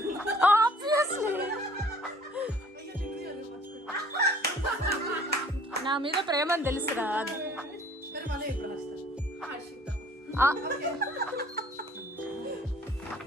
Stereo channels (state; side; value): normal; both; correlation 0.54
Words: ఆబ్వియస్లీ. నా మీద ప్రేమని తెలుసురా. మరి మళ్ళీ ఎప్పుడు వస్తా?